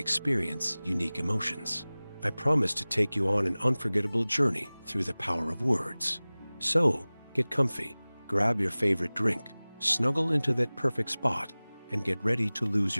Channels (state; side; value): inverted; both; correlation -0.99